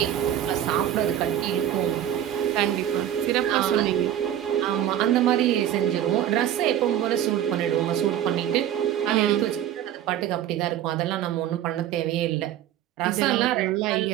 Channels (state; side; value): quieter; left; 11.3 dB